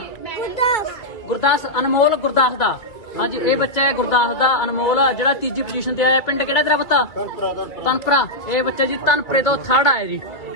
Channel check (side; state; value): right; late; 2.5 ms